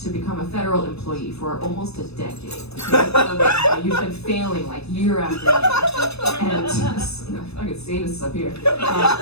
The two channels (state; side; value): late; right; 0.79 ms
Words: a federal employee for almost a decade. Okay? You've been failing like year after year. And I could say this up here.